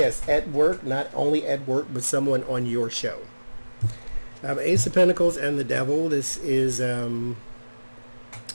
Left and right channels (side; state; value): both; inverted; correlation -1.00